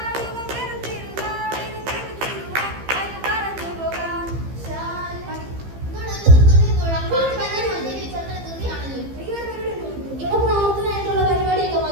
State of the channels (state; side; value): late; left; 15 ms